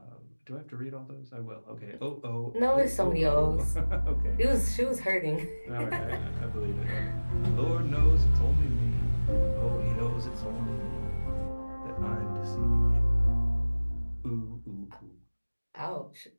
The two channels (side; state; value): both; inverted; correlation -1.00